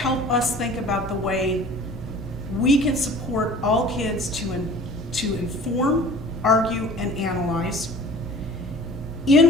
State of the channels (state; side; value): normal; both; correlation 0.45